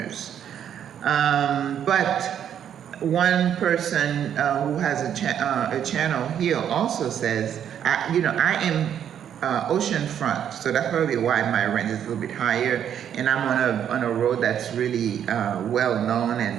But one person who has a channel here also says, I am oceanfront, so that's probably why my rent is a little bit higher, and I'm on a road that's really well known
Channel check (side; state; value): left; quieter; 9.3 dB